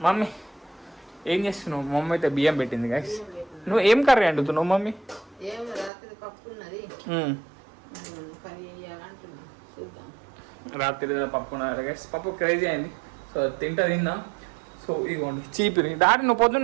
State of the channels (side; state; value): left; drops out; at 5.9 s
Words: మమ్మీ ఏం చేస్తున్నావు? మమ్మీ అయితే బియ్యం పెట్టింది గైస్. నువ్వు ఏం కర్రీ వండుతున్నావు మమ్మీ? రాత్రి పప్పు ఉన్నారు గైస్. పప్పు క్రేజీ అయింది. సో తిందా. సో ఇదిగోండి చీపిరి. డాడీ నువ్వు